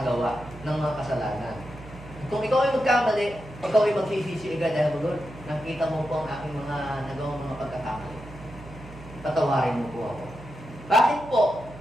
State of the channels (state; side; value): noise; right; hum, 16 dB below the sound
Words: ng mga kasalanan. Kung ikaw ay magkamali, ikaw ay magsisisi agad dahil Lord, nakita mo po ang aking mga nagawang mga pagkakamali. Patawarin mo po ako. Bakit po?